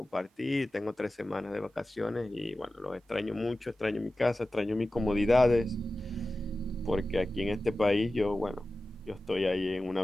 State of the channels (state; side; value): normal; both; correlation 0.95